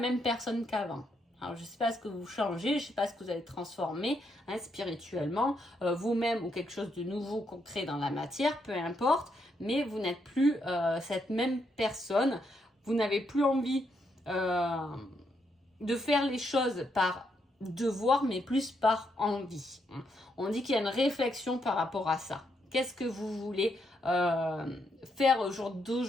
personne qu'avant. Alors, je ne sais pas ce que vous changez, je ne sais pas ce que vous allez transformer spirituellement, vous-même ou quelque chose de nouveau concret dans la matière, peu importe, mais vous n'êtes plus cette même personne. Vous n'avez plus envie de faire les choses par devoir, mais plus par envie. On dit qu'il y a une réflexion par rapport à ça. Qu'est-ce que vous voulez faire au jour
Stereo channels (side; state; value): both; normal; correlation 0.78